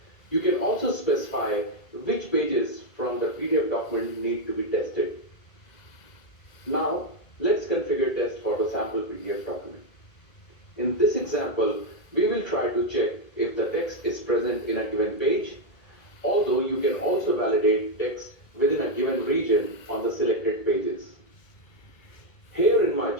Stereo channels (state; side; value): late; right; 2.0 ms